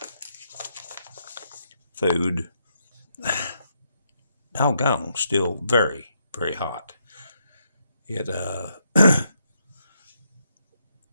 food. Doggone, still very, very hot. It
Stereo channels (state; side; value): inverted; both; correlation -0.78